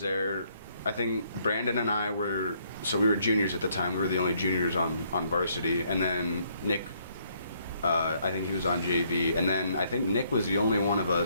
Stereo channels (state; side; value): inverted; both; correlation -0.69